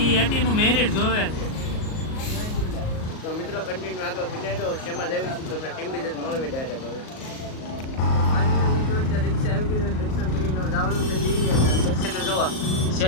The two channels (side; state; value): right; late; 38 ms